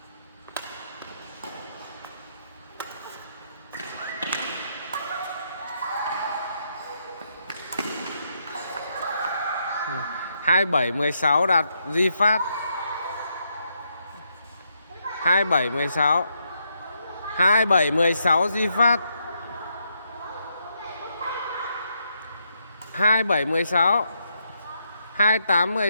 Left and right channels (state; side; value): inverted; both; correlation -0.79